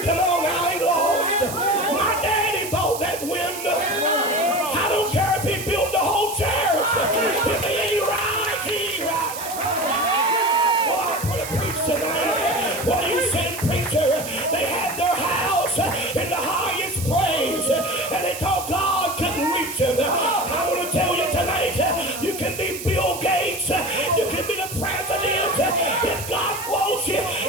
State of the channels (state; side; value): noise; right; hiss, 9 dB below the sound